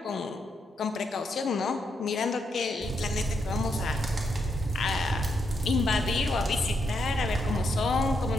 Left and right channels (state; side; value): normal; both; correlation 0.79